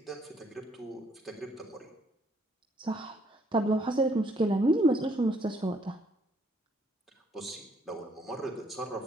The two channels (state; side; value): normal; both; correlation 0.68